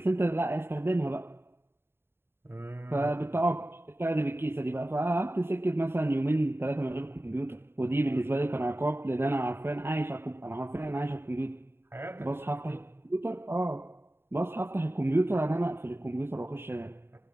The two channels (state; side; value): late; left; 0.11 ms